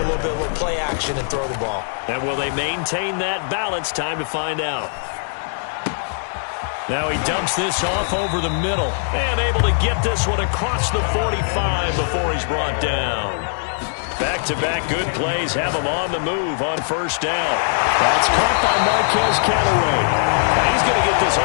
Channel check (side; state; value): right; silent; digital silence